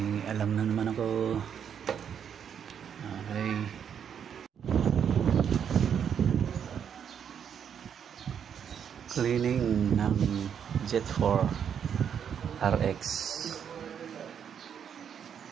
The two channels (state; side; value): quieter; left; 8.1 dB